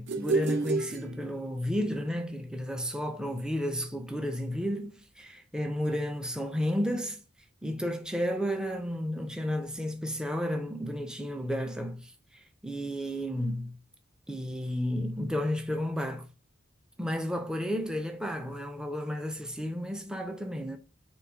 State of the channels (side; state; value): both; normal; correlation 0.80